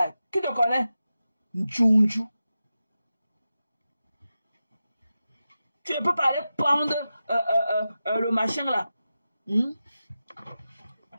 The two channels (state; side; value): inverted; both; correlation -0.92